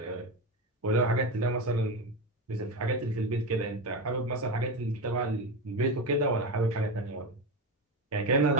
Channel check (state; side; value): normal; both; correlation 0.17